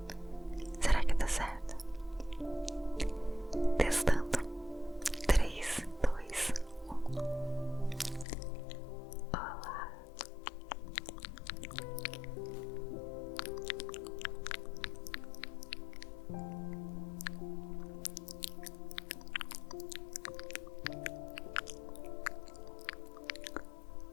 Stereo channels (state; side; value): drops out; right; at 8.2 s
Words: Será que dá certo? Testando. 3, 2, 1. Olá.